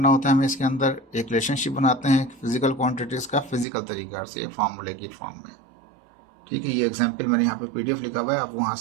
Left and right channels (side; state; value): left; drops out; at 3.7 s